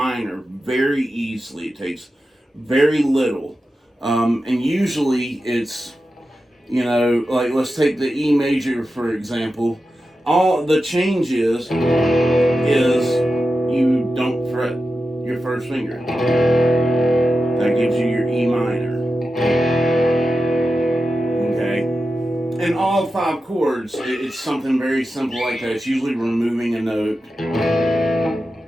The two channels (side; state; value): both; normal; correlation 0.91